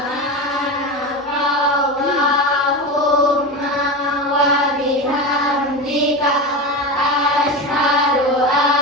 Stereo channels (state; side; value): normal; both; correlation 0.22